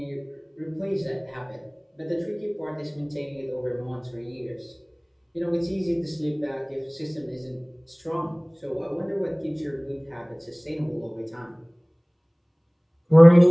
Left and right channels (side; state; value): both; identical; correlation 1.00